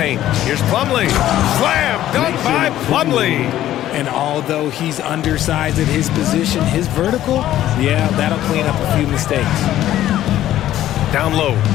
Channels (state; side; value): quieter; right; 13.0 dB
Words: Here's Plumlee. Slam dunk by Plumlee. And although he's undersized at his position, his vertical, yeah, that'll clean up a few mistakes. Down low.